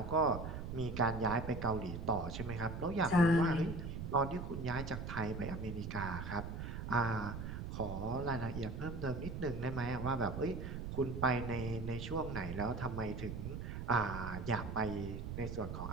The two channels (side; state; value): right; noise; rumble, 6 dB below the sound